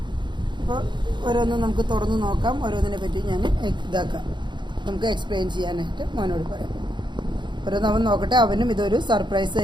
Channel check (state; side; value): late; left; 0.22 ms